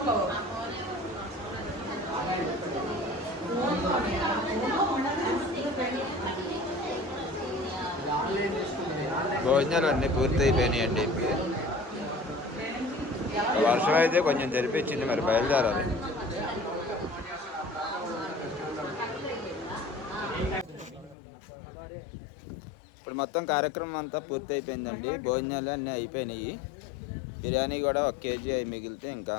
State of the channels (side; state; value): right; drops out; at 21.2 s